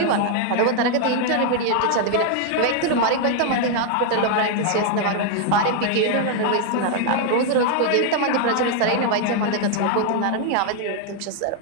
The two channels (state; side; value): different; both; correlation 0.00